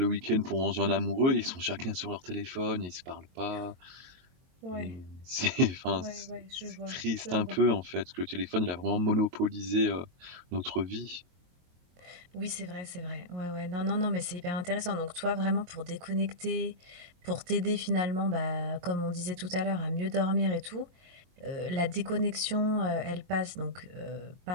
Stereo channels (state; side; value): late; left; 23 ms